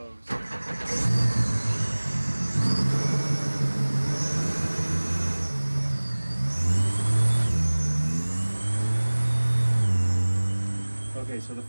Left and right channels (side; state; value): both; inverted; correlation -1.00